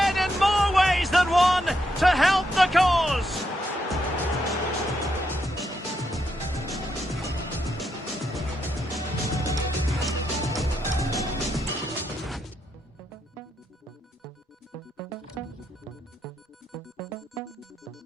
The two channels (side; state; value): both; normal; correlation 0.80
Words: in more ways than one to help the cause.